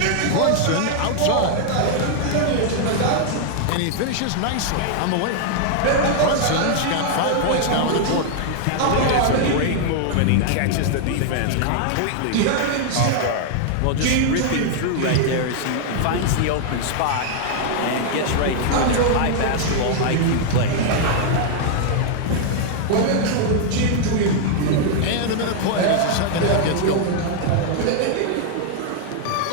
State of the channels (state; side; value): different; both; correlation 0.00